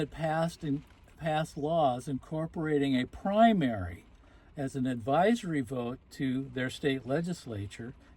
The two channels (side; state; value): both; identical; correlation 1.00